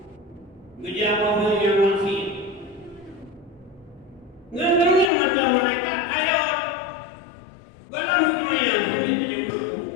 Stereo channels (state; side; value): drops out; right; at 5.1 s